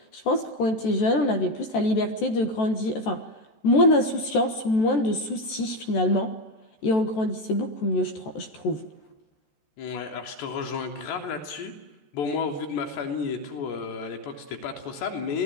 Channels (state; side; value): late; right; 14 ms